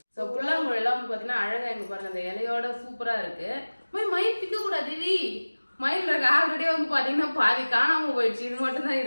ஸோ புல்லாங்குழல் எல்லாம் வந்து பாத்தீங்கன்னா அழகா இங்க பாருங்க அந்த இலையோட சூப்பரா இருக்கு. மயில் பிக்க கூடாது, மயில் இருக்கு. ஆல்ரெடி வந்து பாத்தீங்கன்னா பாதி காணாம போயிடுச்சு, இது மட்டும் தான்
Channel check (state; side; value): inverted; both; correlation -1.00